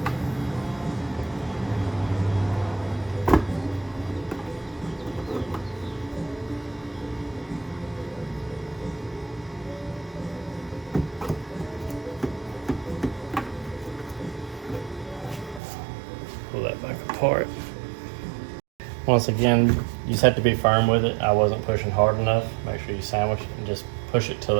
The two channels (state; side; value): drops out; left; at 15.6 s